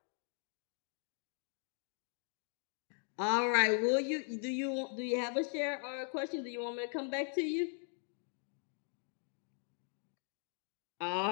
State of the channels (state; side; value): silent; right; 51 dB below the other